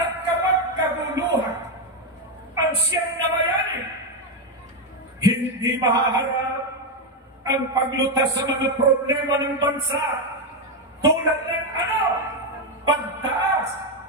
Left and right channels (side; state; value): both; normal; correlation 0.06